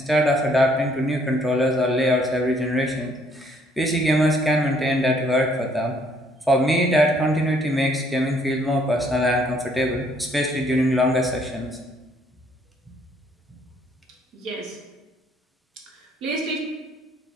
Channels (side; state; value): both; normal; correlation 0.65